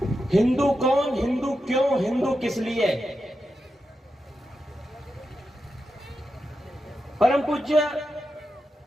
हिंदू कौन, हिंदू क्यों, हिंदू किस लिए। परम पूज्य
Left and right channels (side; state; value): both; normal; correlation 0.88